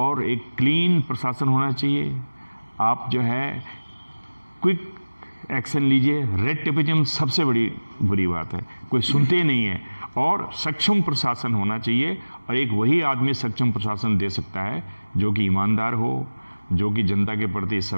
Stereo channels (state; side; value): inverted; both; correlation -1.00